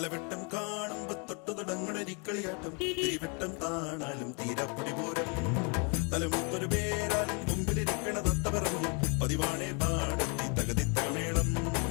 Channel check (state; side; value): quieter; right; 35.2 dB